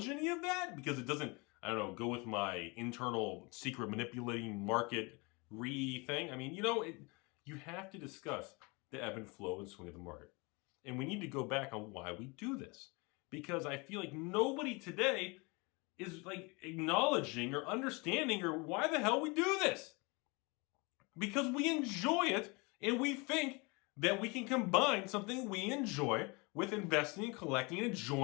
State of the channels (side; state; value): right; quieter; 28.1 dB